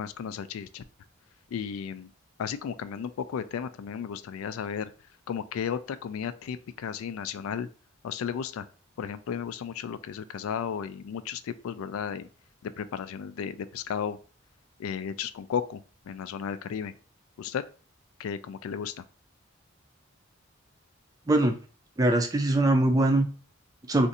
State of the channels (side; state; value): both; normal; correlation 0.49